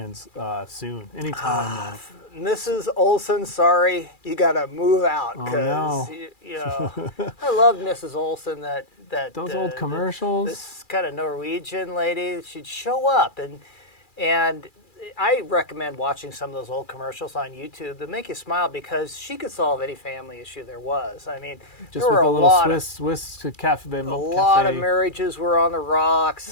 soon, anytime. Mrs. Olson, sorry, you got to move out because I love Mrs. Olson. Those old commercials. This kind of Norwegian lady, she'd show up and I recommend watching some of those old commercials on YouTube that make you smile because she could solve any family issue there was. I mean, just there were a little Swiss cafe. A lot of marriages were on the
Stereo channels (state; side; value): late; right; 2.4 ms